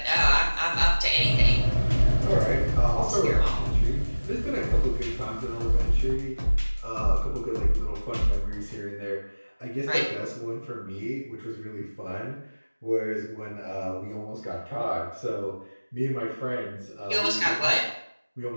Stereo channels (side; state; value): both; inverted; correlation -1.00